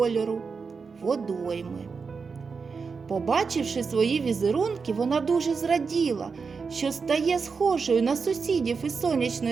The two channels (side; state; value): left; quieter; 5.2 dB